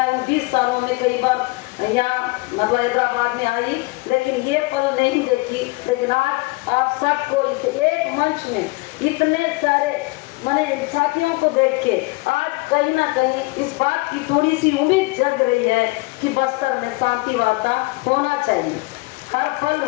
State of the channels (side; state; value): right; quieter; 24.7 dB